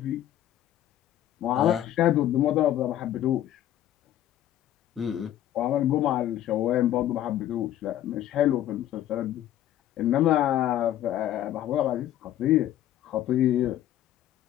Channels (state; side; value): quieter; right; 12.3 dB